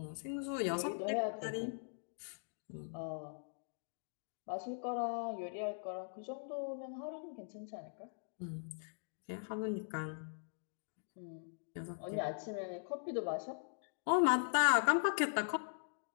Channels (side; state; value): right; silent; digital silence